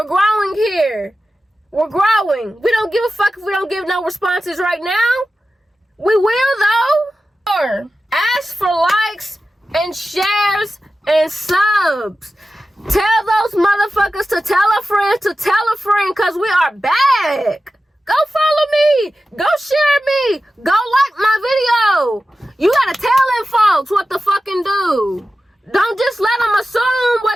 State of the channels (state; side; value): normal; both; correlation 0.94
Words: growing here. We're growing. We don't give a fuck if we don't give no responses right now. We will, though. Or ask for likes and shares and subs. Tell those motherfuckers to tell a friend to tell a friend, because we are back. Go follow me. Go share me. Go like my video. You gotta tell them folks what to fucking do. Don't just let them assume